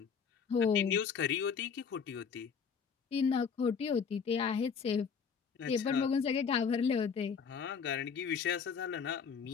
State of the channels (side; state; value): right; quieter; 6.3 dB